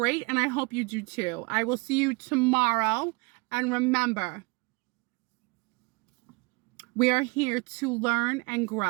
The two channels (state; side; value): quieter; left; 27.5 dB